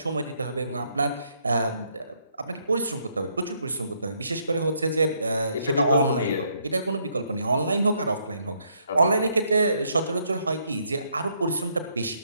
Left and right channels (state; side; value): inverted; both; correlation -0.72